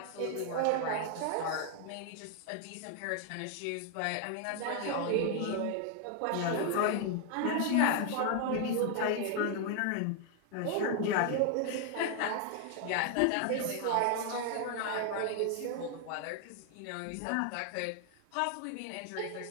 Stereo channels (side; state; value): both; different; correlation 0.00